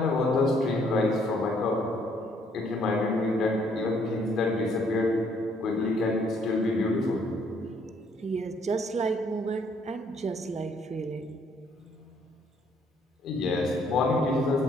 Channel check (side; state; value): both; normal; correlation 0.66